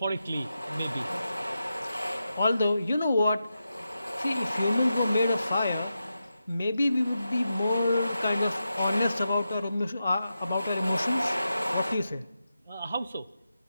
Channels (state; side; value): inverted; both; correlation -0.89